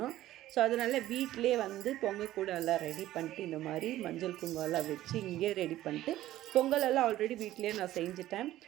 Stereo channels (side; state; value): left; quieter; 14.4 dB